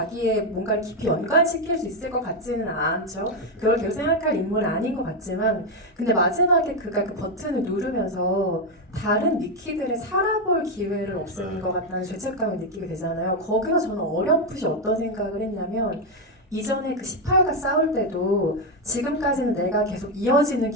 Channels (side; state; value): both; normal; correlation 0.07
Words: 뭔가를 깊이 연관시킬 수 있을 것 같지는 않죠. 그걸 계속 생각할 인물은 아닌 것 같지만 근데 마지막에 그가 그 버튼을 누르면서 다른 미키들의 살아볼 기회를 없애는 것 같다는 죄책감을 느끼게 되잖아요. 거기서 저는 어렴풋이 어떤 생각을 했냐면 이전에 그 18과 싸울 때도 지금까지는 내가 계속 이어지는